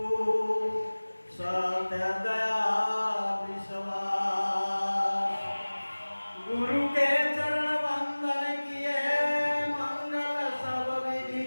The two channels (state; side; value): inverted; both; correlation -1.00